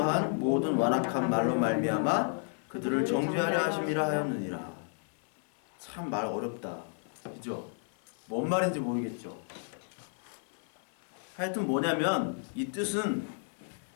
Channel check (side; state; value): right; silent; 56 dB below the other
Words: 한 모든 완악한 말로 말미암아 그들을 정죄하려 하심이라 하였느니라. 참 말 어렵다. 그죠? 뭔 말인지 모르겠죠. 하여튼 뭐냐면 이 뜻은